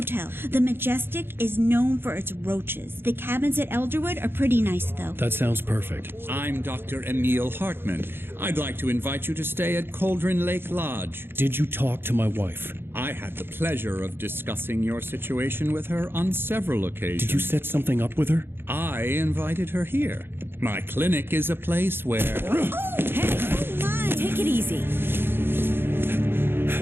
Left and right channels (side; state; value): left; late; 0.11 ms